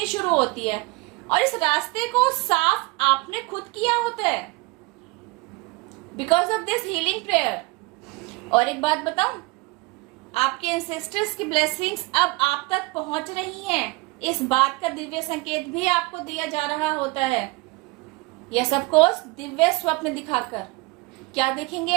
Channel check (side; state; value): left; quieter; 24.1 dB